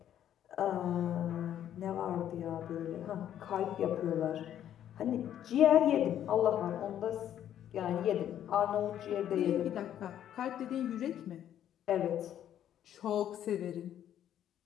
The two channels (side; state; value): right; quieter; 10.7 dB